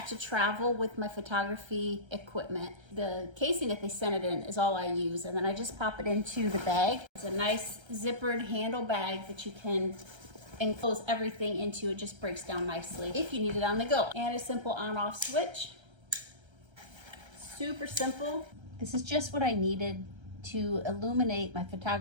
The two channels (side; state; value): left; late; 1.3 ms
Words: to travel with my photography equipment. The casing that they sent it in is all I use, and then I just pop it into the bag. It's a nice zippered handle bag that you can enclose everything into. It just breaks down nicely if you need it on the go. And a simple on-off switch. Super simple. This is just what I needed to illuminate my